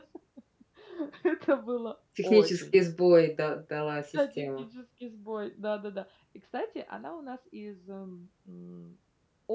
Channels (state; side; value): identical; both; correlation 1.00